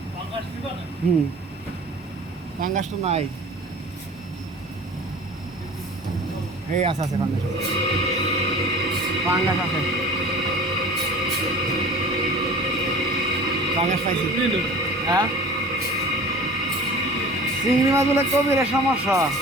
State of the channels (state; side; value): normal; both; correlation 0.42